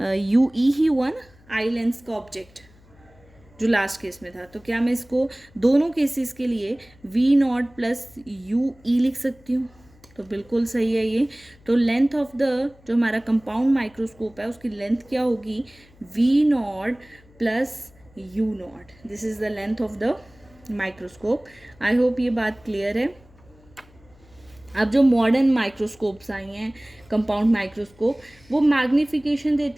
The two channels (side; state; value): left; noise; hum, 27 dB below the sound